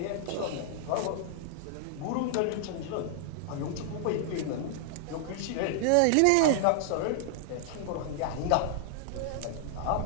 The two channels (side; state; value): both; different; correlation -0.01